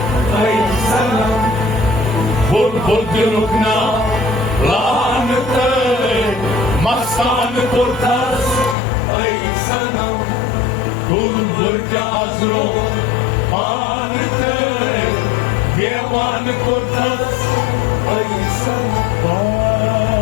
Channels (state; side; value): drops out; right; at 8.8 s